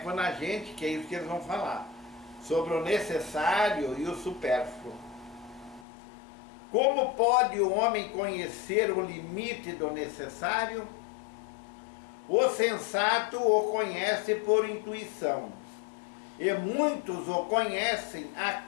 a gente, que é isso que eles vão falar, sobre o necessário e o supérfluo. Como pode o homem conhecer o limite do necessário? O sensato o conhece por intuição, e muitos o conhecem à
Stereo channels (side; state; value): right; drops out; at 5.9 s